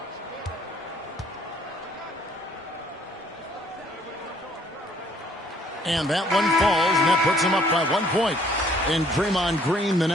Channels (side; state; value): both; normal; correlation 0.62